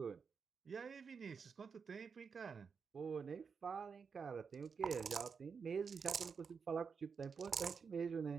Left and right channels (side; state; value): left; quieter; 5.8 dB